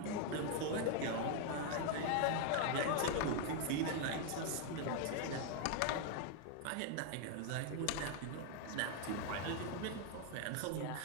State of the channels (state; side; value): different; both; correlation 0.01